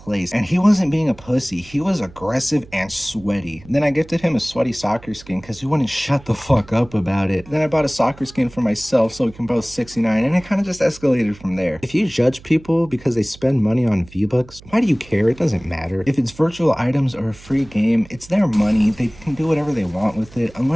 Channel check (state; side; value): noise; right; hum, 21 dB below the sound